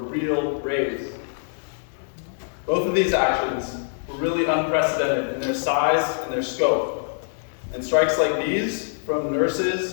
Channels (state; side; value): silent; right; digital silence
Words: raise. Both of these actions were really unprecedented in their size and their scope. And strikes like these from